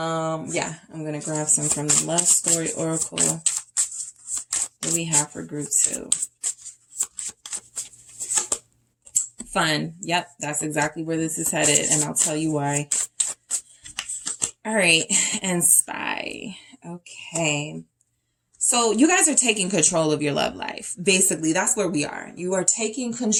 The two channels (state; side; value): identical; both; correlation 1.00